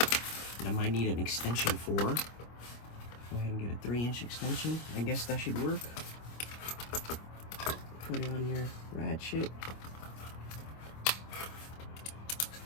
that I might need an extension for. Go ahead and get a 3-inch extension. I guess that should work. Put it on your ratchet.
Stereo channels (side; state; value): right; late; 25 ms